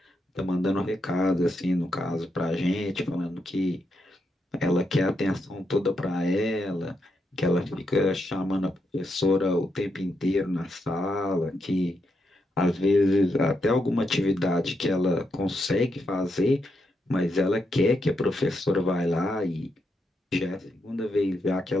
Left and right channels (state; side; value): normal; both; correlation 0.82